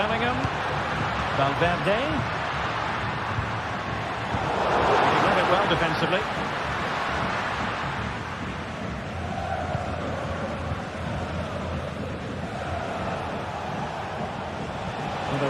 Valverde. He read it well defensively.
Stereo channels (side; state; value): both; identical; correlation 1.00